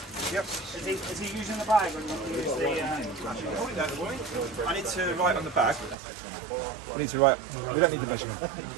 Yep. Is he using the bag or do you want to use the... I need to write on the bag. We need to write. We don't need the measurement.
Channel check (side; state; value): left; drops out; at 6.0 s